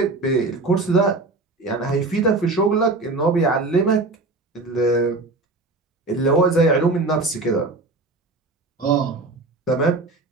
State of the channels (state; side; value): quieter; left; 3.3 dB